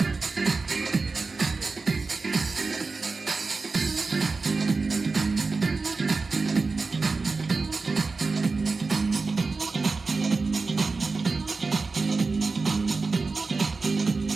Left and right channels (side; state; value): left; quieter; 4.1 dB